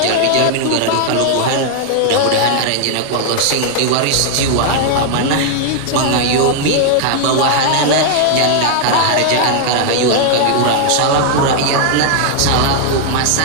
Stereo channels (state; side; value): different; both; correlation -0.01